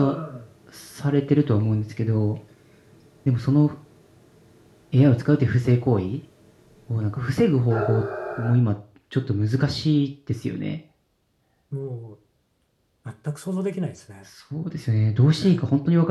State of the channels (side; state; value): both; identical; correlation 1.00